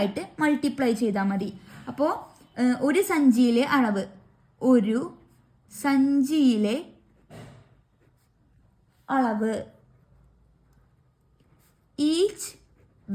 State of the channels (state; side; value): identical; both; correlation 1.00